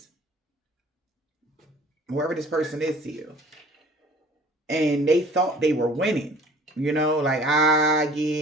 Whoever this person is to you. And they thought they were winning. Like,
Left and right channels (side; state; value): both; normal; correlation 0.50